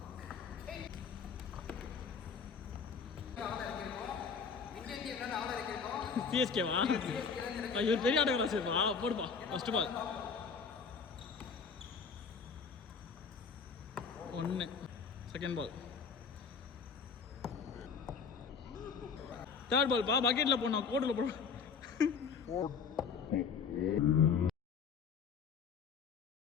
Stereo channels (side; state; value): right; quieter; 5.8 dB